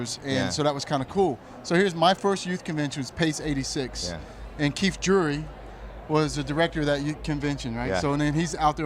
and so that was kind of cool. So here's my first youth convention, was Pace 86, and Keith Drury was the director of that youth convention, right? So and then he's out there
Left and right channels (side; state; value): both; identical; correlation 1.00